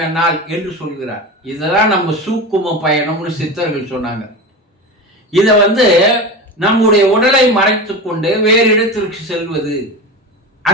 என்னால் என்று சொல்கிறார். இதெல்லாம் நம்ம சூக்கும பயணம்னு சித்தர்கள் சொன்னாங்க. இதை நம்முடைய உடலை மறைத்து கொண்டு வேறு இடத்திற்கு செல்வது,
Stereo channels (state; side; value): normal; both; correlation 0.26